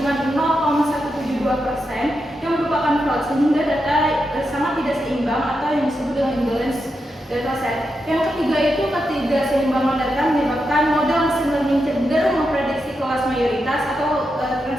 0,172% yang merupakan fraud, sehingga data sangat tidak seimbang atau yang disebut dengan imbalance dataset. Yang ketiga itu ketidakseimbangan data menyebabkan model machine learning cenderung memprediksi kelas mayoritas atau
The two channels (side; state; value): both; normal; correlation 0.86